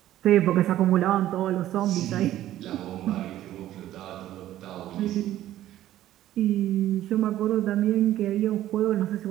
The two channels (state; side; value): quieter; left; 13.4 dB